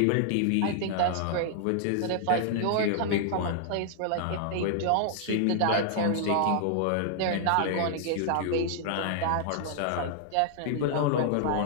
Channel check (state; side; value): different; both; correlation -0.01